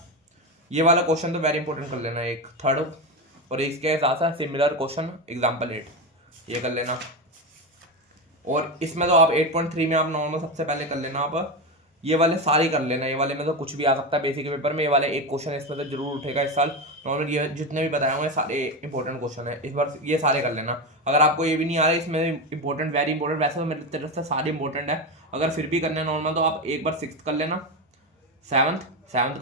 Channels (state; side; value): normal; both; correlation 0.16